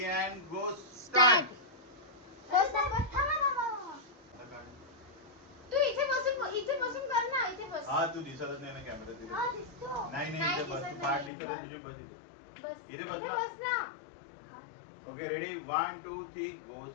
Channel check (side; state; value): right; drops out; at 11.3 s